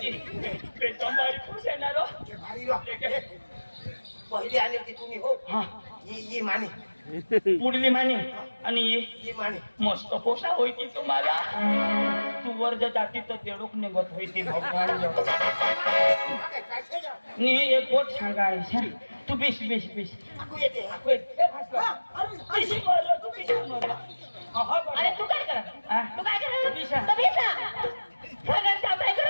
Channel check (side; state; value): both; inverted; correlation -1.00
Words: पे तंबाई खुश आहे ना रो भारी रो पहिले आले होते तुम्ही हो हा ये माने पुढली माने आणि ही माने मस्त पोसा होती तुम्हाला तू वर जाती तर तेडूक निघत होती भगवान नी एक गोट सांगायचं तू बिश बिश बिश आकू येते अरे तू काय कर तू काय कर बिशा. तर बिशा सगळं काय